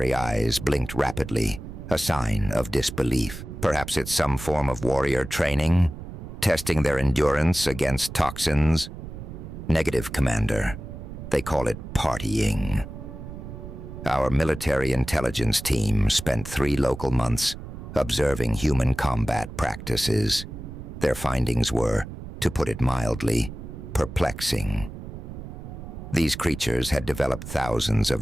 eyes blinked rapidly, a sign of disbelief. Perhaps it's some form of warrior training, testing their endurance against toxins. "Negative, Commander. They call it partying." Our military intelligence team spent 3 local months observing human combat practices. Their findings were, to put it mildly, perplexing. These creatures had developed thousands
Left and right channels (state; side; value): noise; right; rumble, 11 dB below the sound